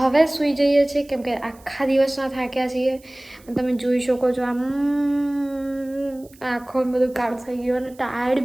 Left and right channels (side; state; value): right; noise; hiss, 27 dB below the sound